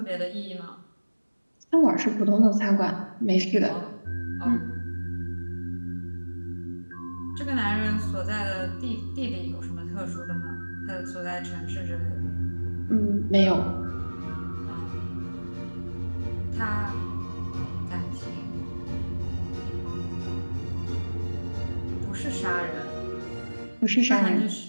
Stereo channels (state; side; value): inverted; both; correlation -1.00